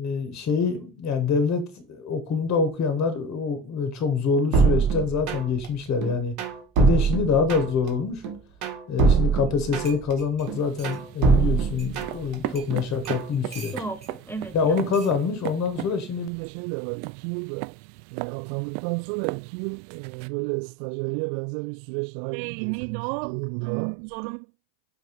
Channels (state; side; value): drops out; left; at 16.3 s